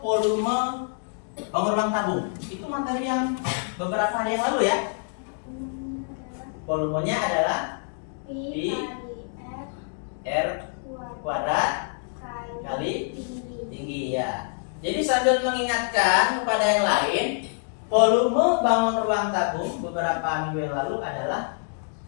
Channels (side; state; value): right; silent; 61 dB below the other